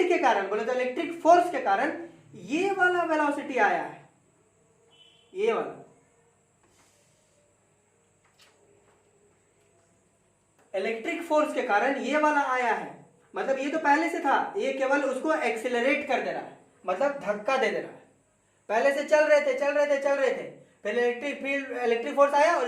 के कारण, बोले तो इलेक्ट्रिक फोर्स के कारण ये वाला वेलोसिटी आया है, ये वाला इलेक्ट्रिक फोर्स के कारण ये वाला आया है। मतलब ये तो पहले से था, ये केवल उसको एक्सिलरेट कर दे रहा है, मतलब धक्का दे रहा है। पहले से चल रहे थे, फिर इलेक्ट्रिक फोर्स आया और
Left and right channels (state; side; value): identical; both; correlation 1.00